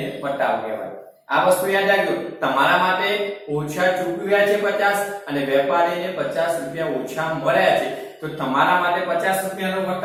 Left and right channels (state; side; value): identical; both; correlation 1.00